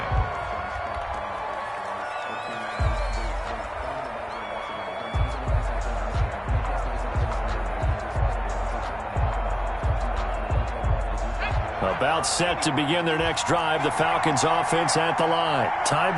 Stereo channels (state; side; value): identical; both; correlation 1.00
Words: About set to begin their next drive, the Falcons offense at the line. Tie